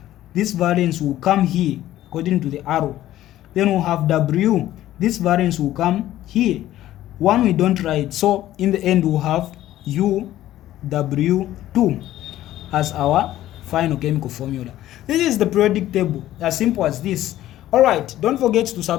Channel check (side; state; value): right; quieter; 13.9 dB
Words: This valence will come here according to the arrow. Then we'll have W. This valence will come here. 1 we don't write. So in the end, we'll have UW2 as our final chemical formula. This is the periodic table, as simple as this. Alright, don't forget to